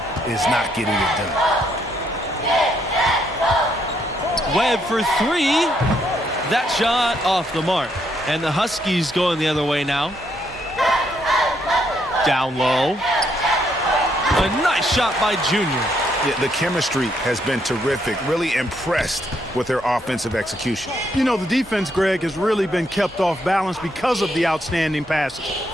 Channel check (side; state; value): both; normal; correlation 0.74